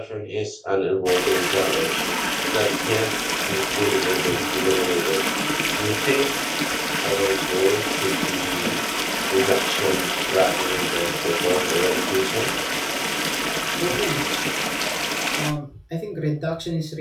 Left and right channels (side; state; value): both; identical; correlation 1.00